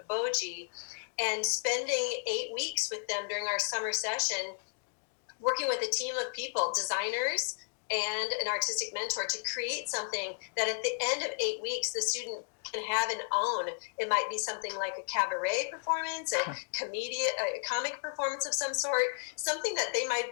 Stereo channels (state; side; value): silent; right; 56 dB below the other